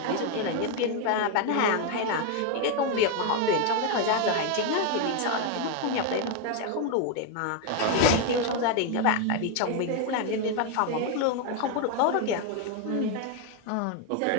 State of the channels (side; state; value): both; different; correlation 0.01